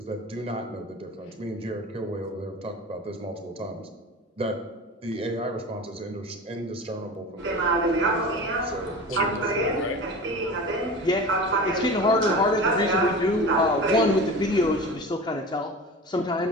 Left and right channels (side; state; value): both; normal; correlation 0.33